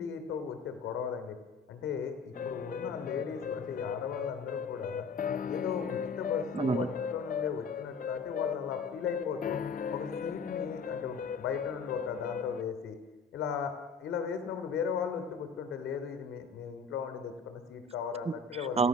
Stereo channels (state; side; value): quieter; right; 4.3 dB